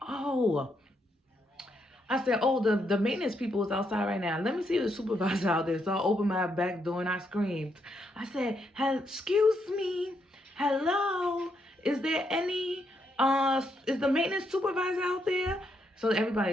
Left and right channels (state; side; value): normal; both; correlation 0.78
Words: I said, oh, the maintenance people is outside right now. Let me see the supervisor out there. So I opened my back door and I screamed. I said, excuse me, hello, is there any, is the maintenance supervisor out there? So